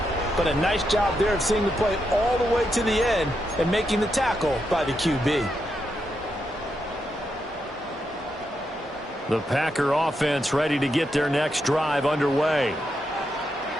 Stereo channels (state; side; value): normal; both; correlation 0.83